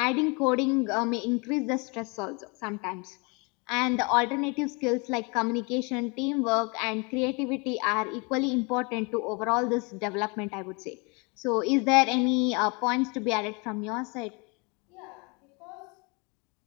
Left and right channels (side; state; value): right; quieter; 30.5 dB